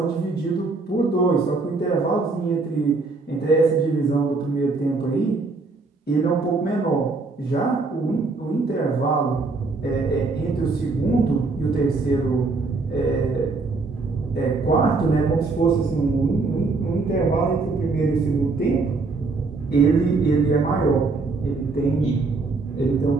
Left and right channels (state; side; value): quieter; left; 3.8 dB